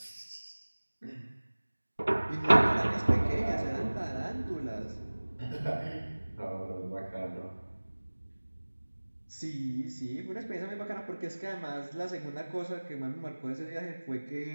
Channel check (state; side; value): inverted; both; correlation -1.00